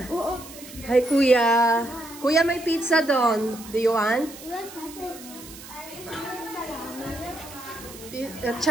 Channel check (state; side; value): noise; right; hiss, 16 dB below the sound